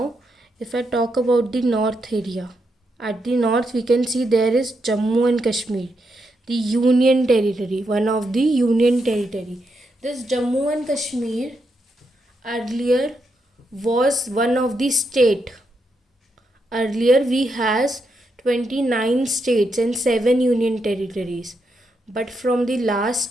if I talk about the north area, at the north we can see there is Jammu and Kashmir, the Union Territory, one of the Union Territory. This Jammu and Kashmir earlier was one of the state. Earlier we has 29 states and 7 union territories, but from the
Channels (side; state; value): both; normal; correlation 0.81